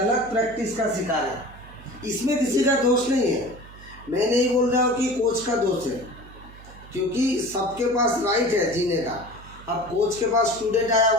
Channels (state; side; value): noise; right; hum, 19 dB below the sound